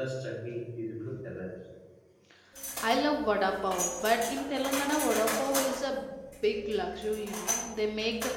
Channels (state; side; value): identical; both; correlation 1.00